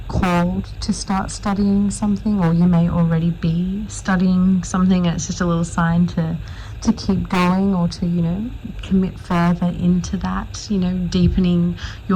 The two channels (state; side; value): identical; both; correlation 1.00